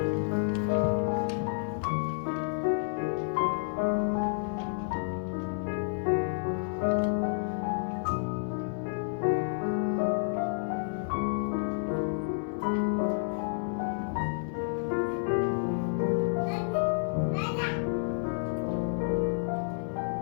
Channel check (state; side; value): silent; right; 58 dB below the other